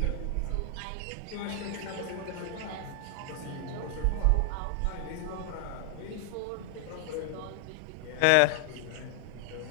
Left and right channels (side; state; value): both; different; correlation 0.00